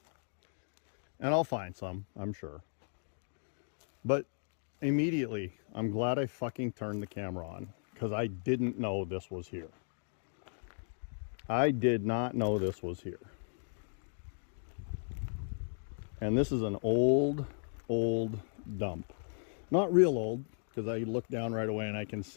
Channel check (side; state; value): right; silent; digital silence